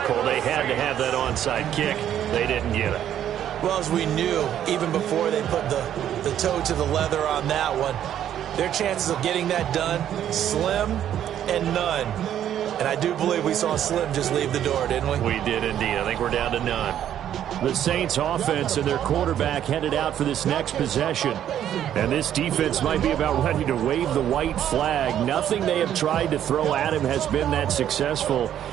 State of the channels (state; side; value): quieter; left; 10.6 dB